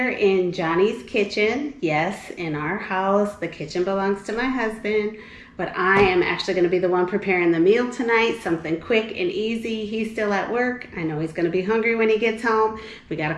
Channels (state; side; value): identical; both; correlation 1.00